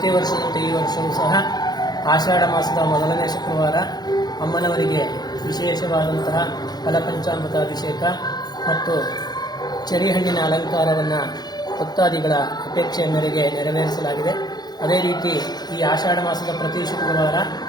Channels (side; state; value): right; late; 0.20 ms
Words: ವರ್ಷದಂತೆ ಈ ವರ್ಷವೂ ಸಹ ಆಷಾಢ ಮಾಸದ ಮೊದಲನೇ ಶುಕ್ರವಾರ ಅಮ್ಮನವರಿಗೆ ವಿಶೇಷವಾದಂತಹ ಫಲಪಂಚಾಮೃತ ಅಭಿಷೇಕ ಮತ್ತು ಚೆರಿಹಣ್ಣಿನ ಅಲಂಕಾರವನ್ನು ಭಕ್ತಾದಿಗಳ ಅಪೇಕ್ಷೆಯ ಮೇರೆಗೆ ನೆರವೇರಿಸಲಾಗಿದೆ. ಅದೇ ರೀತಿ ಈ ಆಷಾಢ ಮಾಸದ ಪ್ರತಿ ಶುಕ್ರವಾರ